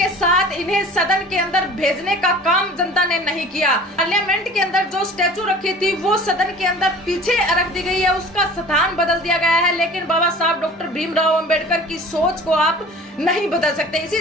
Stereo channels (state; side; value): normal; both; correlation 0.43